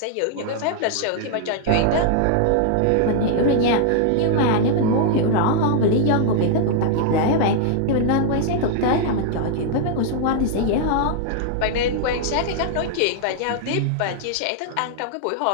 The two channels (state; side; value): different; both; correlation -0.01